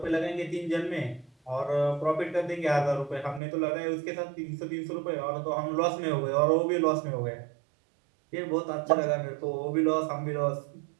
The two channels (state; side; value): drops out; left; at 3.4 s